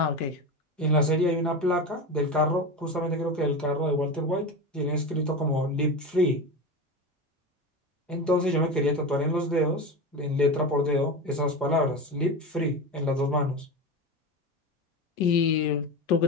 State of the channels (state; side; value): normal; both; correlation 0.23